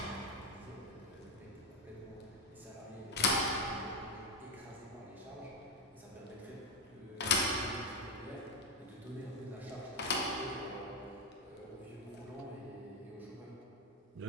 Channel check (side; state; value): both; normal; correlation 0.07